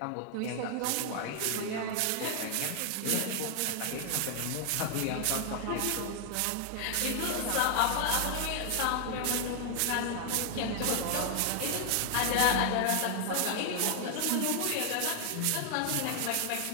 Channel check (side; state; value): both; different; correlation 0.00